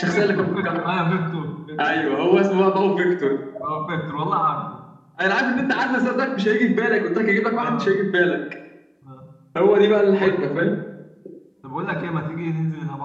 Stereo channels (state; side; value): identical; both; correlation 1.00